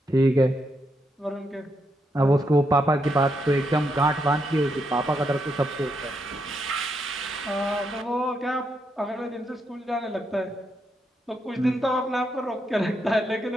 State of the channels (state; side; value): normal; both; correlation 0.80